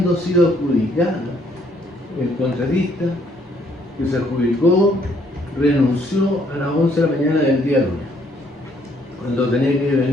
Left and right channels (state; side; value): normal; both; correlation 0.67